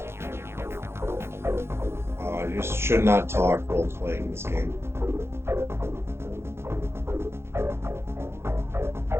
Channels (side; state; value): left; late; 0.12 ms